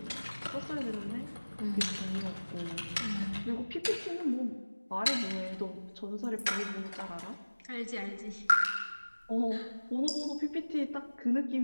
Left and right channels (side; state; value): both; inverted; correlation -1.00